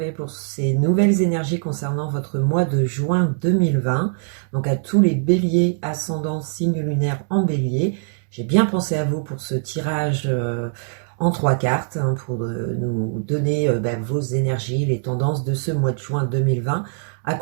pour ces nouvelles énergies concernant votre mois de juin 2020. Donc à tous les Béliers, ascendant, signe lunaire en Bélier, j'ai bien pensé à vous pour ce tirage en 3 cartes, pour nous donner vos énergies, les tendances de ce mois de juin 2020,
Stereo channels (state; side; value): silent; left; digital silence